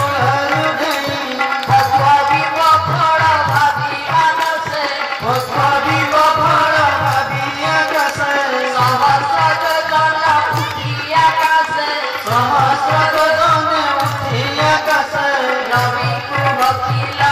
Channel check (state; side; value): identical; both; correlation 1.00